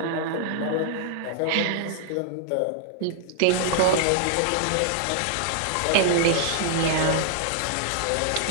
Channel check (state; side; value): different; both; correlation -0.01